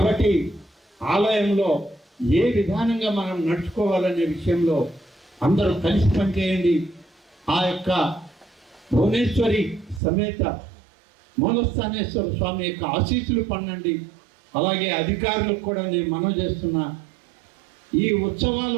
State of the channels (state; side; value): drops out; left; at 10.0 s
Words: ఆలయంలో ఏ విధానంగా మనం నడుచుకోవాలనే విషయంలో అందరూ కలిసి పనిచేయండి. ఆ యొక్క భువనేశ్వరి సమేత మూలస్థానేశ్వర స్వామి యొక్క ఆశీస్సులు పొందండి. అలాగే అధికారులకు కూడా నేను మనవి చేస్తున్నా, ఈ